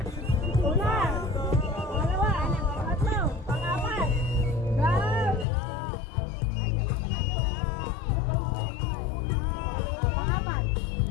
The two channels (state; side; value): drops out; right; at 5.5 s